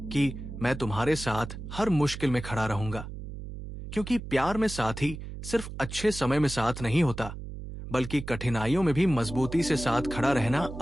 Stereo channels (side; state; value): right; noise; hum, 10 dB below the sound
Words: कि मैं तुम्हारे साथ हर मुश्किल में खड़ा रहूंगा, क्योंकि प्यार में साथी सिर्फ अच्छे समय में साथ नहीं होता बल्कि कठिनाइयों में भी मजबूती से साथ खड़ा रहना